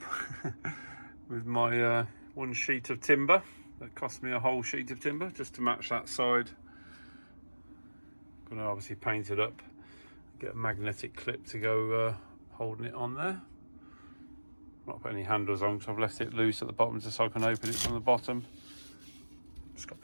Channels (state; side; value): inverted; both; correlation -1.00